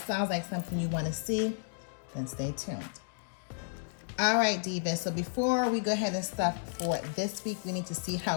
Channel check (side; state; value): right; silent; digital silence